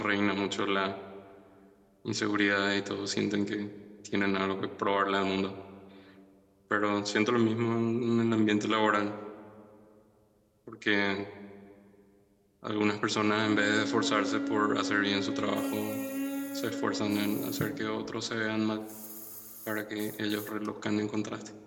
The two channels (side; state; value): both; identical; correlation 1.00